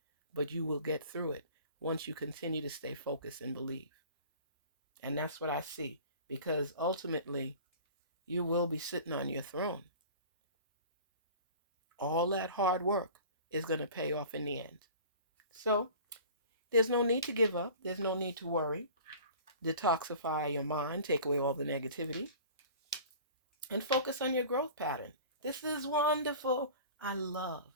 but you will get through it once you continue to stay focused and believe. And that's what I see, because ultimately you will be sitting on your throne. All that hard work is going to pay off in the end. So there's no need to give up. There's no need to worry. Detoxify your mind, take away all the negativity. and focus on your growth pattern. This is wonderful. I love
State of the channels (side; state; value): both; inverted; correlation -0.42